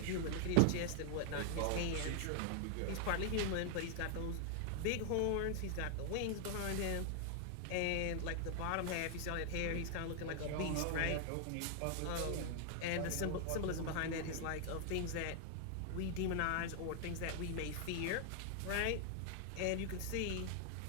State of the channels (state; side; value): different; both; correlation 0.00